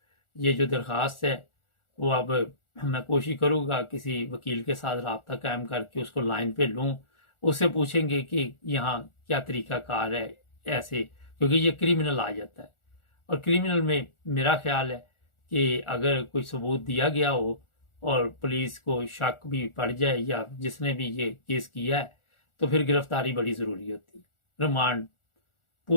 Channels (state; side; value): late; right; 1.4 ms